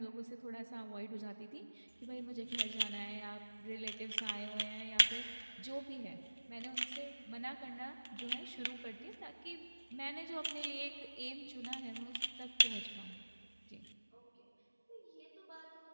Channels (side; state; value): both; inverted; correlation -1.00